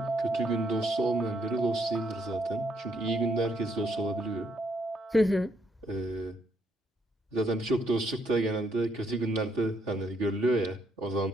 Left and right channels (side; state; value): both; normal; correlation 0.73